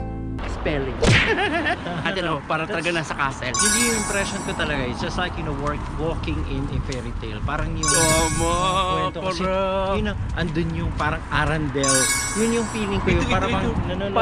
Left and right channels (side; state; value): both; identical; correlation 1.00